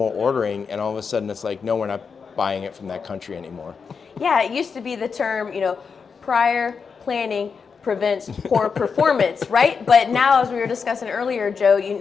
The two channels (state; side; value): quieter; right; 5.7 dB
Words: ordering, and all of a sudden it's like, no, we're not buying it from that country anymore. Yeah, it used to be the term, prior planning prevents poor performance, right? But now, as we were discussing earlier, Joe,